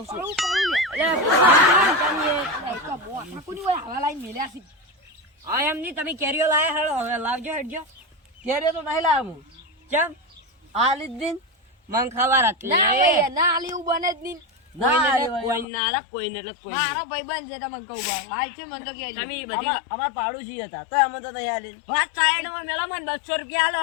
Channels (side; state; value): right; drops out; at 15.7 s